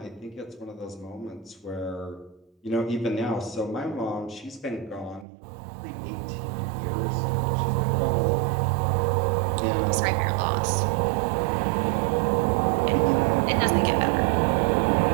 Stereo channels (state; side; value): drops out; left; at 5.2 s